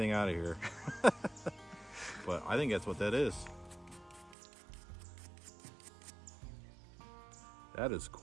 out of here. But I think that's what that is. That is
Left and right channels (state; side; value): drops out; left; at 4.4 s